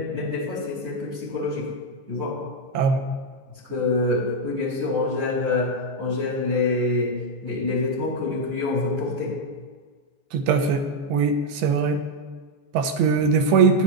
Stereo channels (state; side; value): late; left; 14 ms